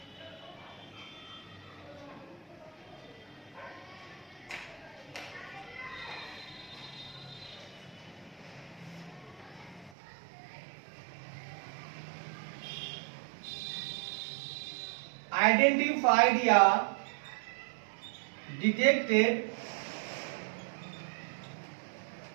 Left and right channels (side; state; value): left; drops out; at 9.9 s